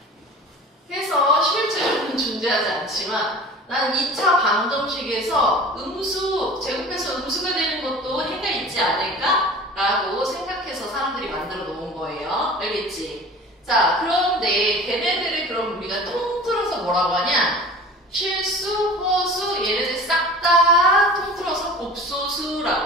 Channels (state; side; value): normal; both; correlation 0.40